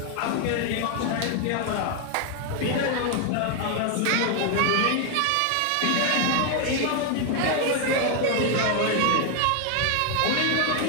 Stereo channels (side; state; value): both; different; correlation 0.00